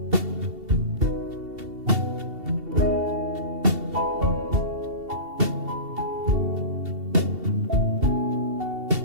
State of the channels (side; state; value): left; late; 2.7 ms